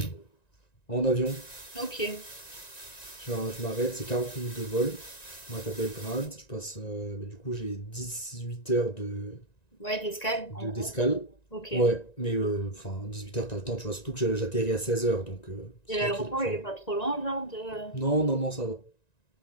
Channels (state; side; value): late; right; 1.9 ms